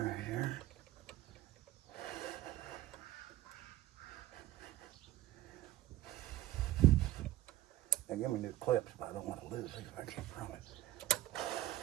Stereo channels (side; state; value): left; quieter; 15.2 dB